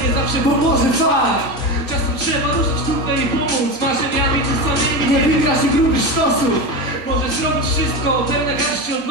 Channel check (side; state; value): right; late; 1.5 ms